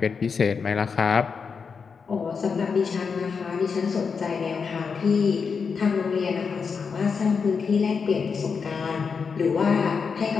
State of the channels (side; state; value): right; quieter; 5.6 dB